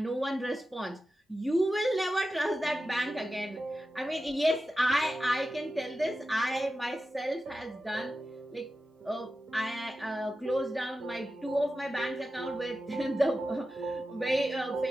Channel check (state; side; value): normal; both; correlation 0.92